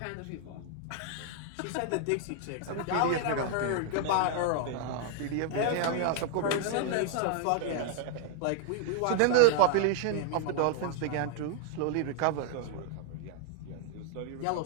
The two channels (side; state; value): both; different; correlation 0.00